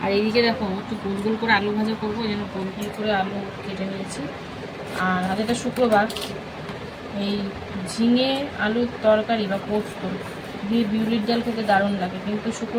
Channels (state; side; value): identical; both; correlation 1.00